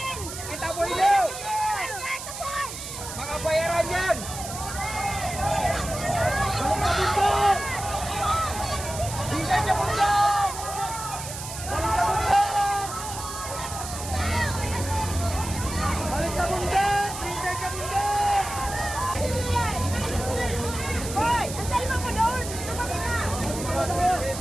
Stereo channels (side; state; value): right; noise; hiss, 9 dB below the sound